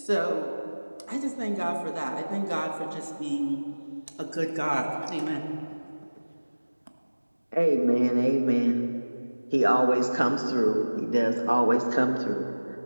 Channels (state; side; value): inverted; both; correlation -1.00